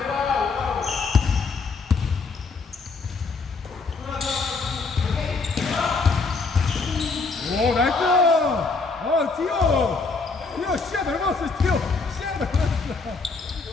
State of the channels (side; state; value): right; quieter; 4.2 dB